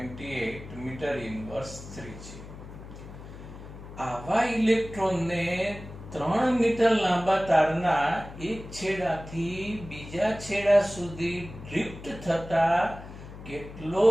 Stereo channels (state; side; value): noise; left; hum, 14 dB below the sound